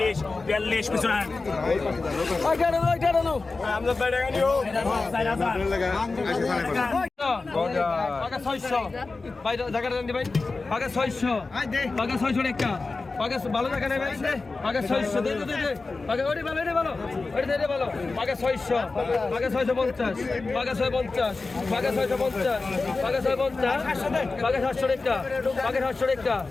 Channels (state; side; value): quieter; right; 3.8 dB